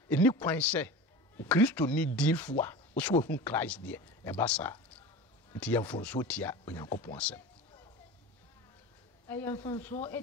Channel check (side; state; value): both; normal; correlation 0.32